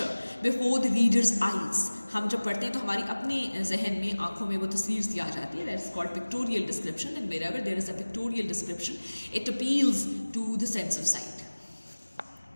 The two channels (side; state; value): both; inverted; correlation -1.00